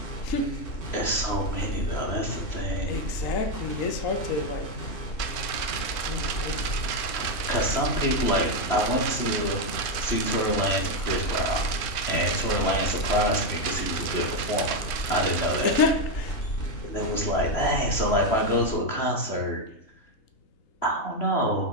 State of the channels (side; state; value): right; late; 3.1 ms